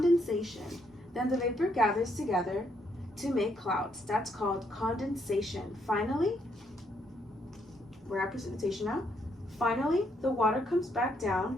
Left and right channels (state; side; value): normal; both; correlation 0.73